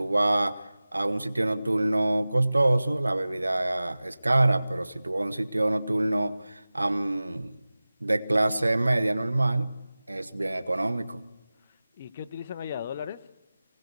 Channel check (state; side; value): inverted; both; correlation -0.97